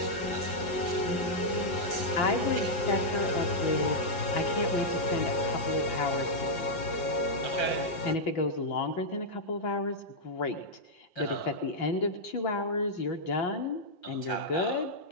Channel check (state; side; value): late; right; 5.7 ms